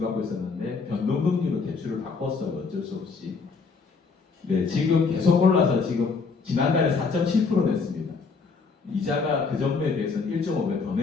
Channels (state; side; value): quieter; right; 4.8 dB